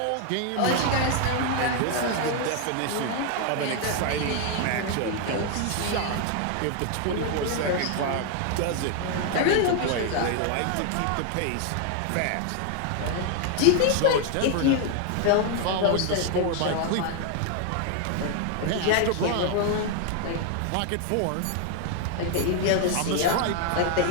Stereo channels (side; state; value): both; different; correlation 0.00